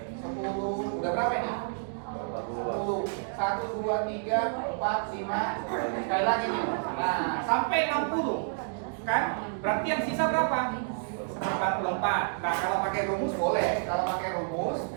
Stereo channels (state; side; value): silent; left; digital silence